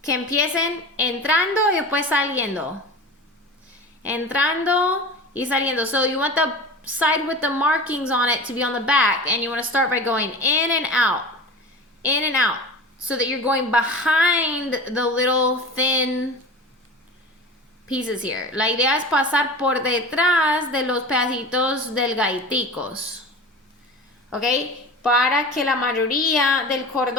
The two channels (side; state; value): both; normal; correlation 0.34